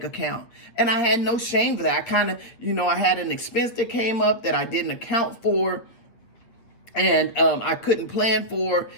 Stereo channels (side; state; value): right; late; 8.7 ms